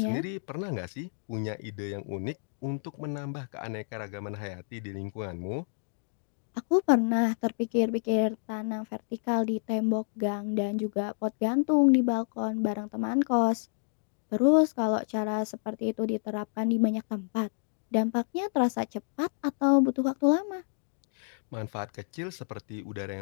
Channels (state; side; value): silent; right; digital silence